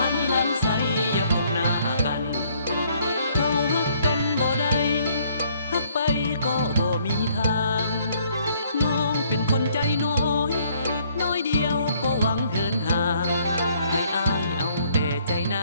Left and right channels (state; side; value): inverted; both; correlation -0.64